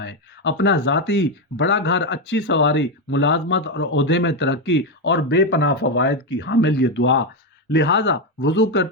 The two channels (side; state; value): both; normal; correlation 0.07